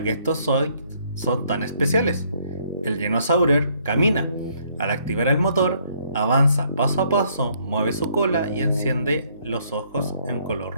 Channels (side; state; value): both; inverted; correlation -0.66